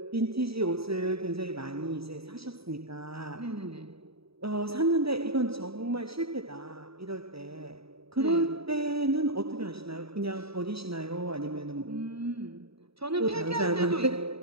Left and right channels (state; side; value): late; left; 0.77 ms